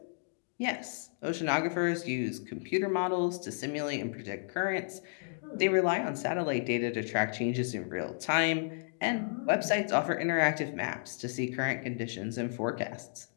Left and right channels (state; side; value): silent; right; digital silence